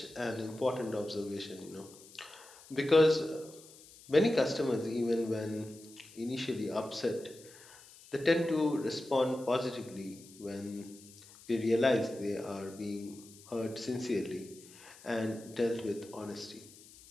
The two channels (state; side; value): noise; left; hiss, 21 dB below the sound